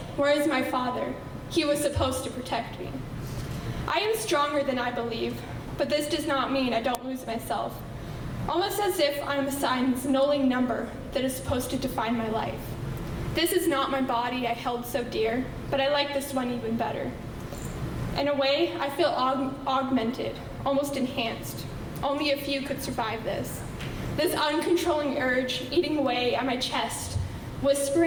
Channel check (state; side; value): identical; both; correlation 1.00